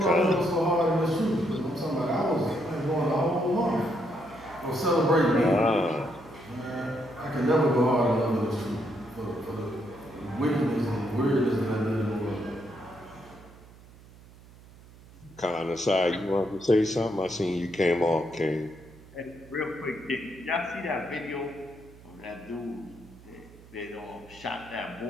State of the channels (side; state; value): right; noise; hum, 22 dB below the sound